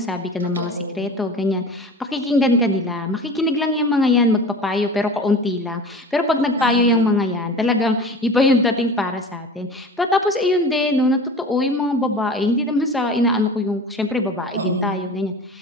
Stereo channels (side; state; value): both; normal; correlation 0.36